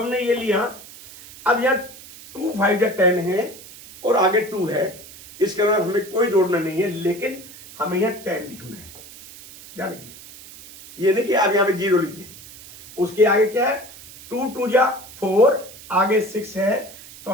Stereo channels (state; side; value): noise; right; hiss, 18 dB below the sound